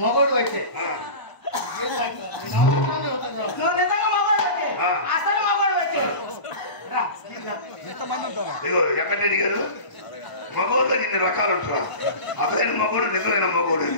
మగోడు అయితే నువ్వు నిజంగా మగవాడు వచ్చే. అసలు మగవాడు వచ్చే. రా. ఎంతమంది ఉంటారా? ఇగో ఎక్కడ అడిగారు? మగోడులో ఇన్ని రకాలు ఉంటారు. అసలైన మగోడు నిజమైన మగోడు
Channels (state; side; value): late; right; 1.0 ms